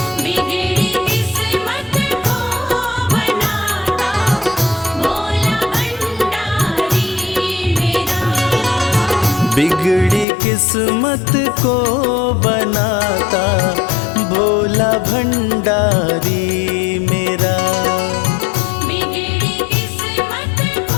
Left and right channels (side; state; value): right; drops out; at 10.2 s